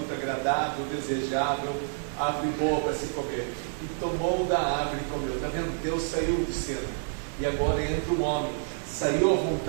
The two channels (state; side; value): silent; left; digital silence